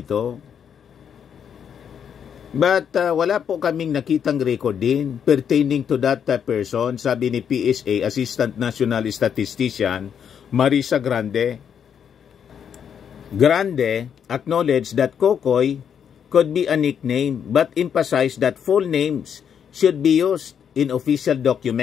But wala po kaming nakitang record din pertaining to that person, sabi ni PSA Assistant National Statistician Marisa Grande. Grande acknowledged that Kokoy could be a nickname but emphasized that full names should be used in official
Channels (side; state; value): right; quieter; 8.0 dB